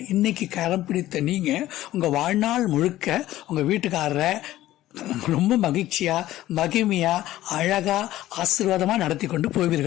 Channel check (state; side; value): quieter; right; 14.9 dB